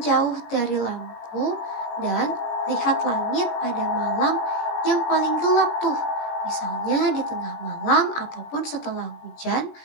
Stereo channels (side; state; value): right; late; 17 ms